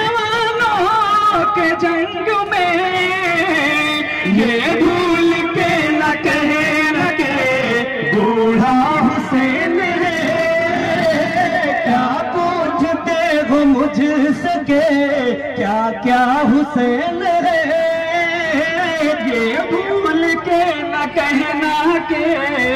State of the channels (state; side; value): identical; both; correlation 1.00